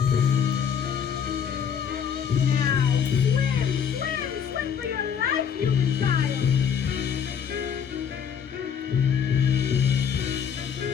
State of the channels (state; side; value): quieter; right; 7.6 dB